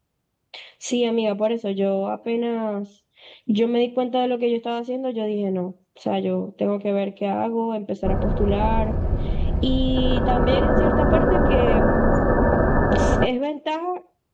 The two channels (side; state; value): both; identical; correlation 1.00